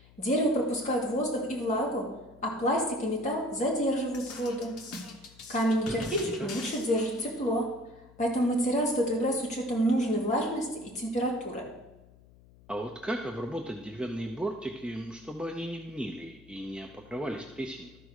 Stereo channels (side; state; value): left; noise; hum, 25 dB below the sound